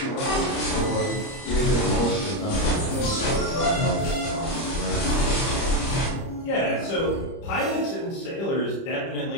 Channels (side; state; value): right; late; 30 ms